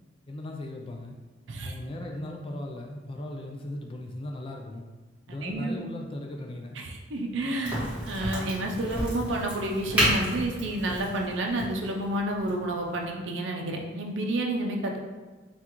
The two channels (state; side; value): normal; both; correlation 0.47